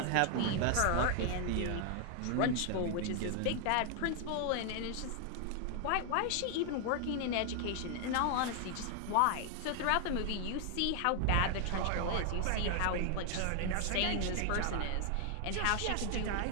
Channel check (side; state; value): both; different; correlation 0.00